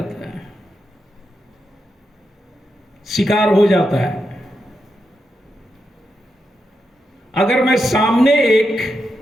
है, शिकार हो जाता है। अगर मैं सामने एक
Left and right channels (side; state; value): both; normal; correlation 0.85